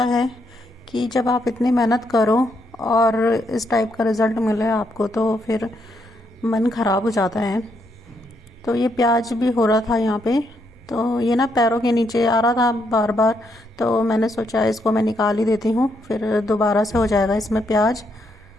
है कि जब आप इतनी मेहनत करो और इस टाइप का रिज़ल्ट मिले आपको तो फिर मन ख़राब हो जाता है। तो ये प्याज भी हो रहा था यहाँ पे, तो ये ना पैरों के नीचे आ रहा था बार बार, तो मैंने सोचा इसको मैं निकाल ही देती हूँ, फिर दोबारा से हो जाएगा इसमें प्याज।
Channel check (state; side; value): normal; both; correlation 0.77